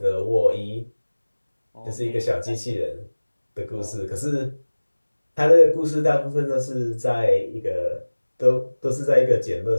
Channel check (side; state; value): both; inverted; correlation -1.00